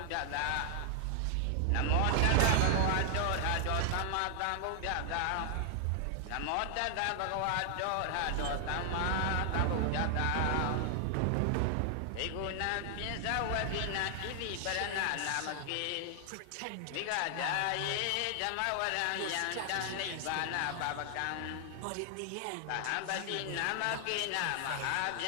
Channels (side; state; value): both; different; correlation 0.00